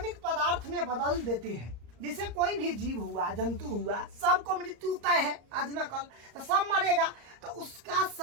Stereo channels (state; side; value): late; left; 34 ms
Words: पदार्थ में बदल देते हैं। जैसे कोई भी जीव हुआ, जंतु हुआ, सबको मृत्यु तय है, आज न कल तो सब मरेगा, तो उसका